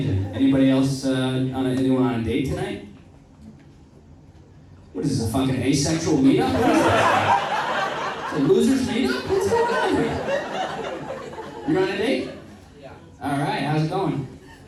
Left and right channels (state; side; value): identical; both; correlation 1.00